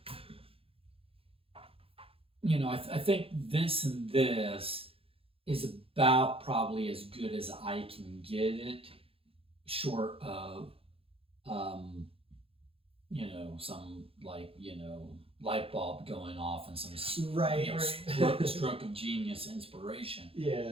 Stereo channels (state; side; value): late; left; 0.27 ms